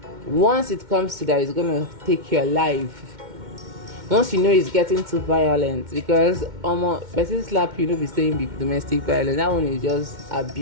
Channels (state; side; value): late; left; 2.1 ms